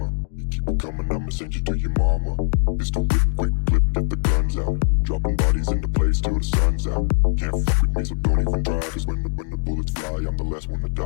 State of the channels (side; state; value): right; silent; digital silence